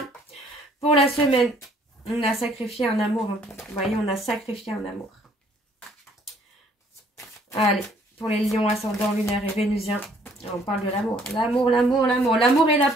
Pour la semaine, on a sacrifié un amour. Vous voyez, on a sacrifié un amour. Allez. Pour les lions ascendant lunaire et vénusien, on parle de l'amour. L'amour, l'amour, l'amour. L'amour est là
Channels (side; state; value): both; normal; correlation 0.61